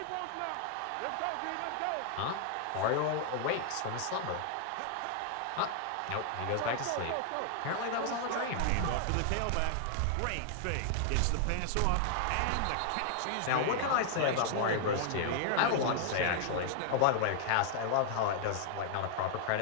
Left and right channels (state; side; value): different; both; correlation -0.01